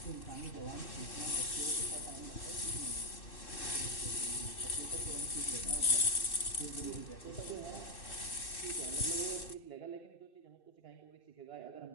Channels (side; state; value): right; late; 2.6 ms